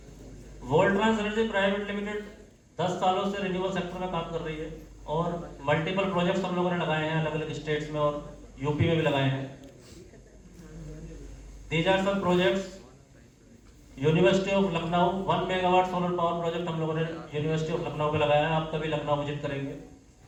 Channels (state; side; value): identical; both; correlation 1.00